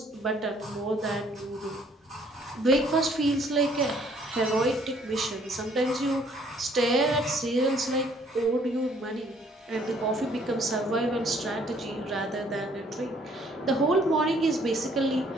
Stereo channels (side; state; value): both; normal; correlation 0.62